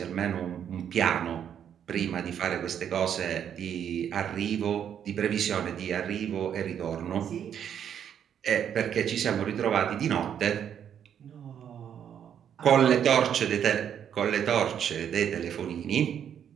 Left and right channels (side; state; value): left; quieter; 8.9 dB